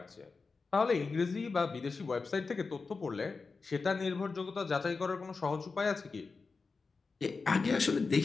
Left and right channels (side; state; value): right; quieter; 4.4 dB